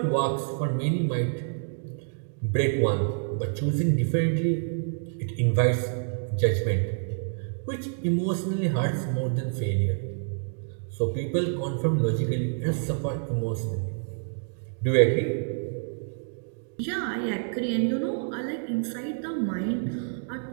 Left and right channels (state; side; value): silent; left; digital silence